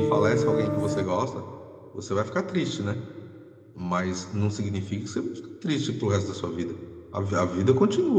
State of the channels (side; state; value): both; identical; correlation 1.00